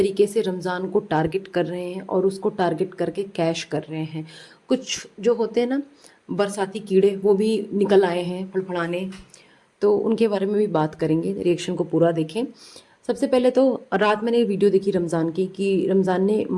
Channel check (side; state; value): both; identical; correlation 1.00